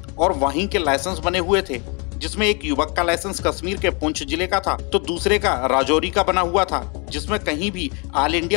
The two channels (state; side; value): quieter; right; 33.0 dB